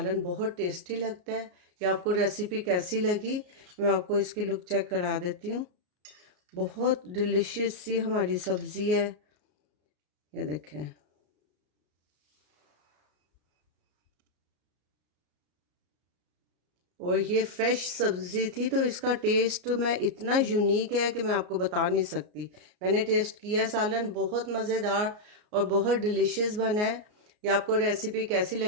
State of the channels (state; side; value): late; left; 33 ms